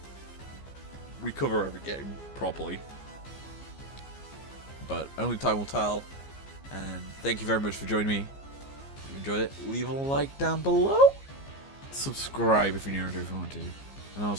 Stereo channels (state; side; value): late; right; 15 ms